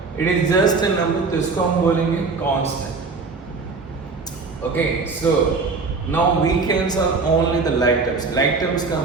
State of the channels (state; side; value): quieter; left; 4.3 dB